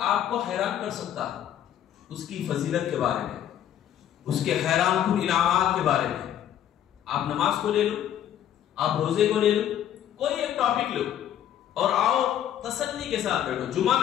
آپ کو حیران کر سکتا ہوں، اس کی فضیلت کے بارے میں، اس کے حیران کن انعامات کے بارے میں. آپ نماز کو لے لو، آپ روزے کو لے لو، کوئی ایک ٹاپک لو اور آؤ تسلی کے ساتھ بیٹھو. جمعہ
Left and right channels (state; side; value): quieter; right; 10.8 dB